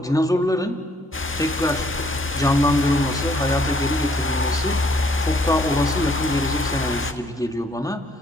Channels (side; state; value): both; normal; correlation 0.65